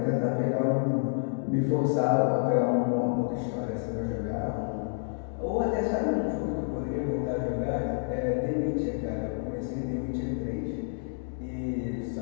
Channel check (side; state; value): right; silent; digital silence